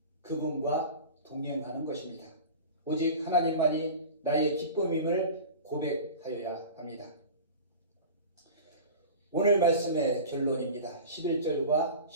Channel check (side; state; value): both; inverted; correlation -0.34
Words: 그분과 동행하는 것입니다. 오직 하나님만이 나의 기쁨임을 고백하여야 합니다. 오늘 말씀의 결론입니다. 11절과